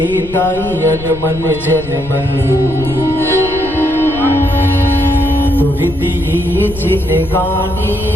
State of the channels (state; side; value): noise; left; rumble, 14 dB below the sound